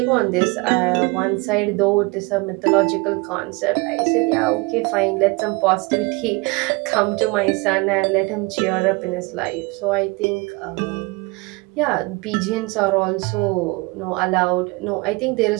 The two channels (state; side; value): quieter; left; 25.6 dB